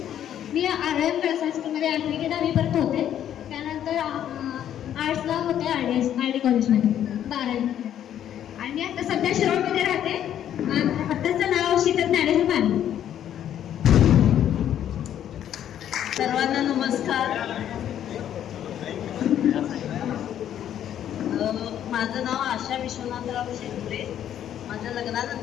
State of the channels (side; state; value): right; quieter; 10.5 dB